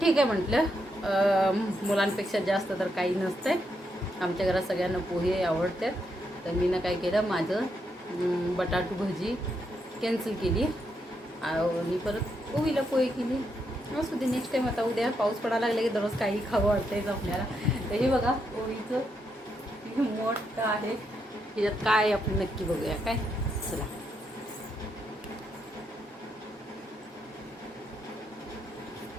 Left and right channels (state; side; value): normal; both; correlation 0.80